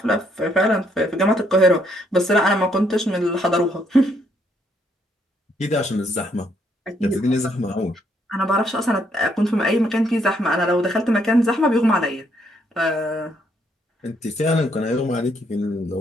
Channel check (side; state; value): both; normal; correlation 0.71